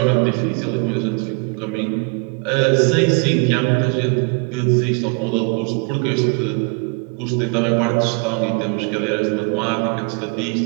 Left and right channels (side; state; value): left; quieter; 33.5 dB